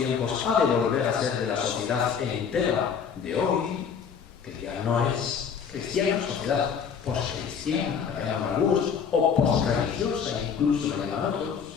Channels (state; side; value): quieter; right; 6.9 dB